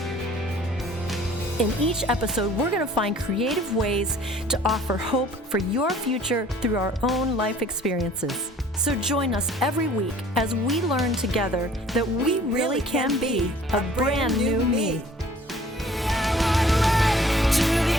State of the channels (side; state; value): both; normal; correlation 0.53